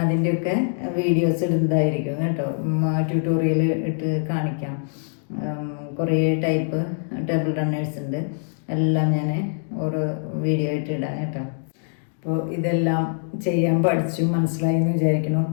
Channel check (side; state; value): right; silent; digital silence